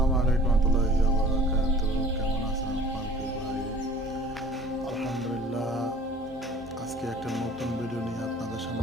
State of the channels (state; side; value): normal; both; correlation 0.49